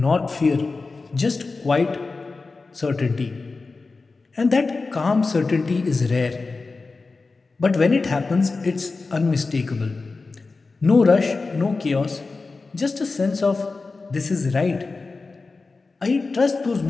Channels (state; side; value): quieter; right; 3.9 dB